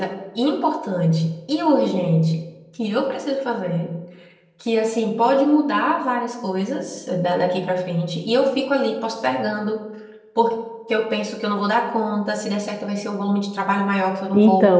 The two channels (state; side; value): identical; both; correlation 1.00